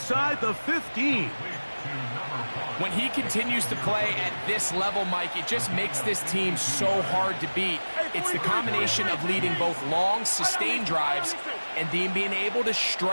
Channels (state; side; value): inverted; both; correlation -1.00